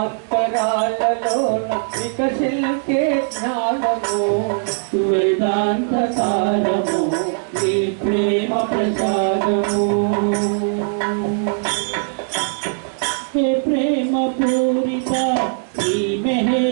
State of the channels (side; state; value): left; silent; digital silence